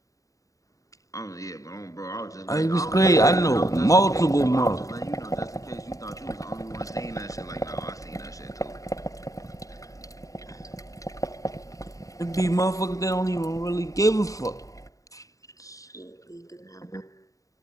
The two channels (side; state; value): right; late; 0.16 ms